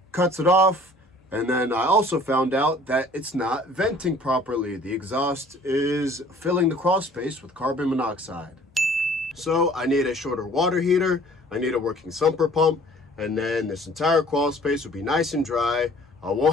cuts it off. And then I also found out that it's not venting properly. The exhaust is filling the Crawlspace with carbon monoxide. So I need a shorter water heater, I need a working sumper pump, and then this entire Crawlspace will be nice and dry. I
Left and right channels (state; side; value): normal; both; correlation 0.52